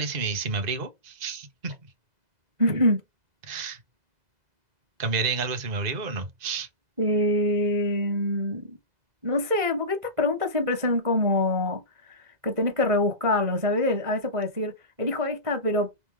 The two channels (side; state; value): left; late; 2.0 ms